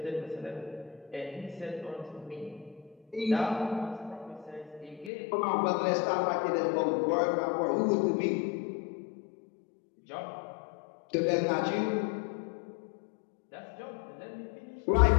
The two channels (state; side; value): drops out; right; at 5.1 s